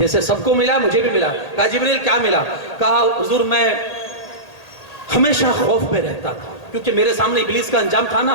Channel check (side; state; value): right; late; 1.8 ms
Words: سب کو ملا مجھے بھی ملا. کہا جبریل کیا ملا؟ کہا حضور میں ہمیشہ خوف میں رہتا تھا، کیونکہ میرے سامنے ابلیس کا انجام تھا